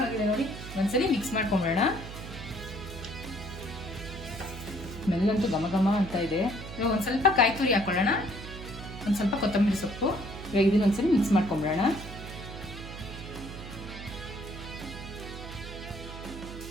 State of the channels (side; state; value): right; noise; hum, 11 dB below the sound